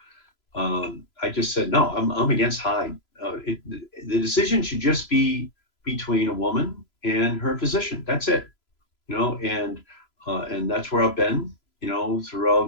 I just said, no, I'm against Hyde. The decision should just be between a woman and her physician. That's it, and that's where I've been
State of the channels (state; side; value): late; right; 3.0 ms